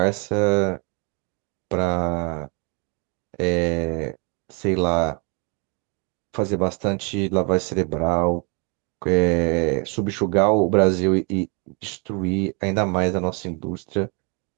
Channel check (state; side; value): quieter; left; 34.0 dB